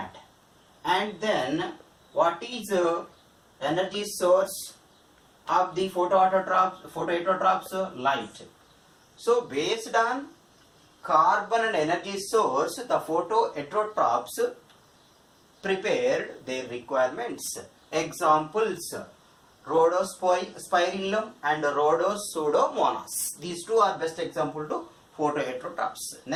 And then what is energy source of the photoautotrophs? Light. So based on carbon and energy source, the photoautotrophs prepared their requirements. Examples: Rhodospirillum and Rhodosudomonas. These two are best example to photoheterotrophs.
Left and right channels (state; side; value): identical; both; correlation 1.00